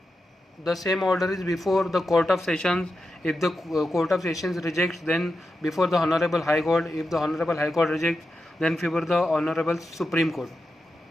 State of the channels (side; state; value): both; normal; correlation 0.90